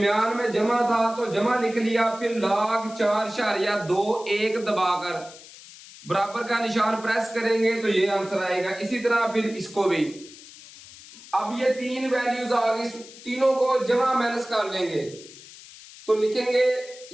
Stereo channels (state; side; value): noise; left; hiss, 18 dB below the sound